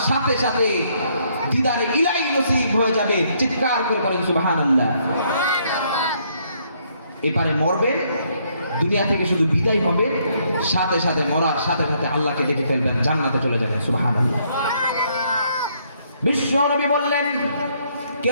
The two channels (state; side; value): inverted; both; correlation -0.70